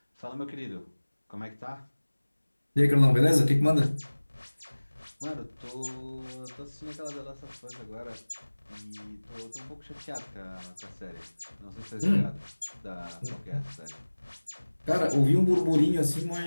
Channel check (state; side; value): inverted; both; correlation -1.00